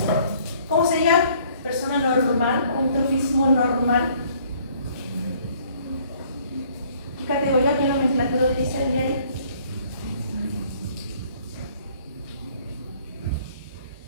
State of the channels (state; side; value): inverted; both; correlation -0.59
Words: ¿Cómo se llama? Persona normal, un trofismo normal. ¿Qué categoría, qué nomenclatura utiliza el diario?